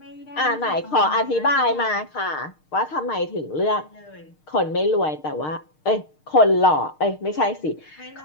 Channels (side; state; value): right; late; 6.5 ms